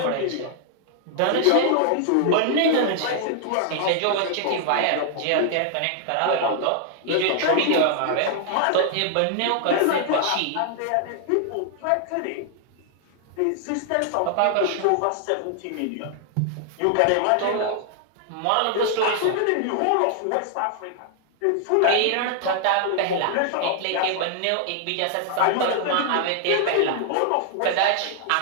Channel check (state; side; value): different; both; correlation 0.00